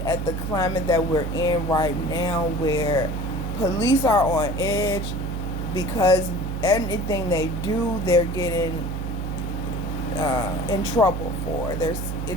at the climate that we're in right now, where police are on edge because anything they do, they're getting in trouble for.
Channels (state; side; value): noise; right; hum, 4 dB below the sound